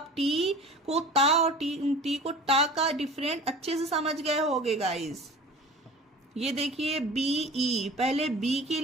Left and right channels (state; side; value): normal; both; correlation 0.40